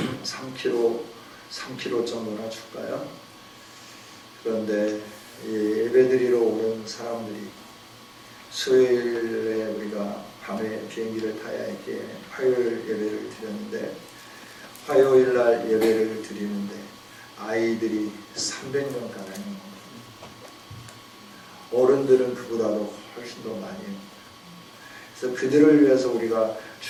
3kg 정도나 줄까요? 그런데 예배드리러 오는 사람들이 수요일에 우리가 밤에 비행기를 타야 했기에 화요일 예배를 드렸는데, 화요일 날 예배를 드리는데 아이들이 300명 가량입니다. 어른들은 그보다도 훨씬 더 많이 합니다. 그래서 그들을 위해서 우리가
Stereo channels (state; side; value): identical; both; correlation 1.00